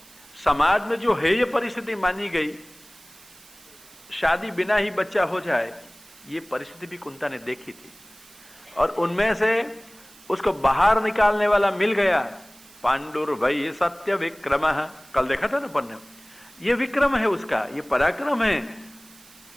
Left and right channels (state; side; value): noise; right; hiss, 23 dB below the sound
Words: समाज में जो हेय परिस्थिति मानी गई, शादी बिना ही बच्चा हो जाए, ये परिस्थिति भी कुंता ने देखी थी। और उनमें से उसको बाहर निकालने वाला मिल गया। पांडुर्भय सत्य विक्रम, कल देखा था ना पन्ने, ये विक्रम है उसका, ये पराक्रम है,